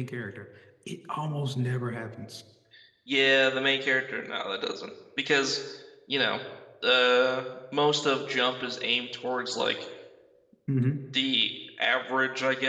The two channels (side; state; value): both; identical; correlation 1.00